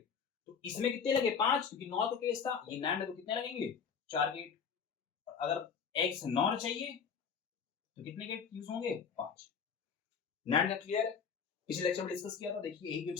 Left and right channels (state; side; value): quieter; right; 6.4 dB